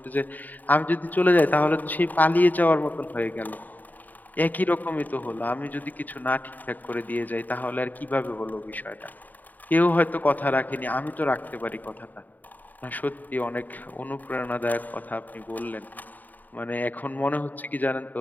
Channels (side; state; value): right; late; 0.084 ms